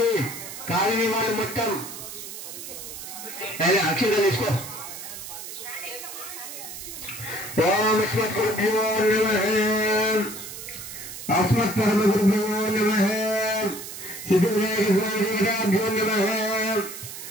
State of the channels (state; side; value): noise; right; hiss, 10 dB below the sound